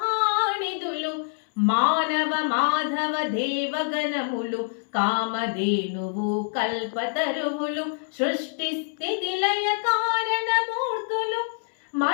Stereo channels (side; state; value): right; silent; 61 dB below the other